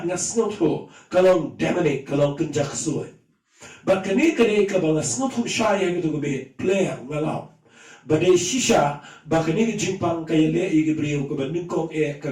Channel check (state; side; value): identical; both; correlation 1.00